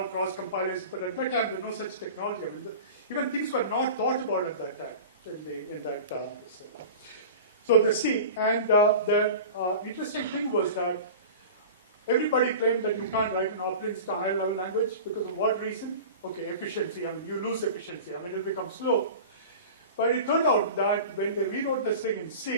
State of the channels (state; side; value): inverted; both; correlation -0.35